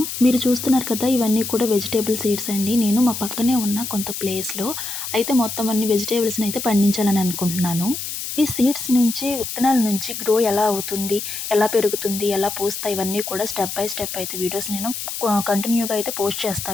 మీరు చూస్తున్నారు కదా! ఇవన్నీ కూడా వెజిటబుల్ సీడ్స్ అండి. నేను మా పక్కనే ఉన్న కొంత ప్లేస్‌లో అయితే మొత్తం అన్ని వెజిటబుల్స్‌ని అయితే పండించాలని అనుకుంటున్నాను. ఈ సీడ్స్ నుంచి విత్తనాల నుంచి గ్రో ఎలా అవుతుంది? ఎలా పెరుగుతుంది? ఎలా పూస్తాయి? ఇవన్నీ కూడా స్టెప్ బై స్టెప్ అయితే వీడియోస్ నేను కంటిన్యూగా అయితే పోస్ట్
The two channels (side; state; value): left; noise; hiss, 6 dB below the sound